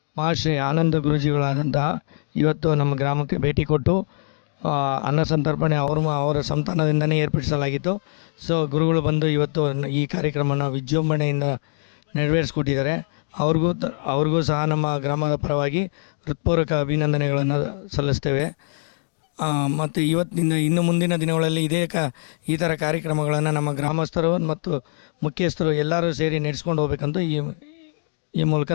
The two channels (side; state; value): right; silent; 64 dB below the other